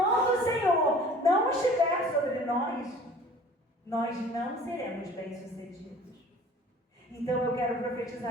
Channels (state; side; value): normal; both; correlation 0.47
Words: do Senhor não estiver sobre nós não seremos bem-sucedidos. Então eu quero